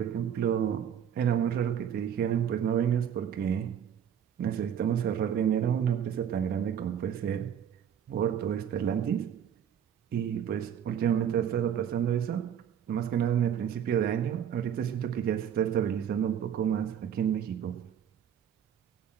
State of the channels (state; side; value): quieter; left; 8.9 dB